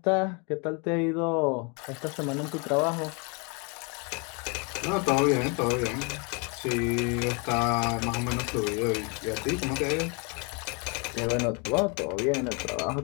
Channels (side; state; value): right; quieter; 33.3 dB